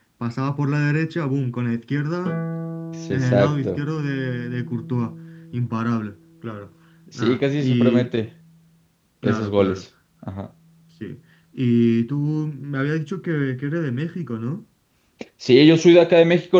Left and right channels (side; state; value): both; identical; correlation 1.00